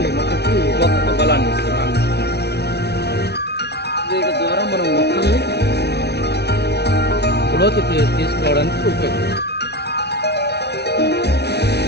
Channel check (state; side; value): late; right; 0.49 ms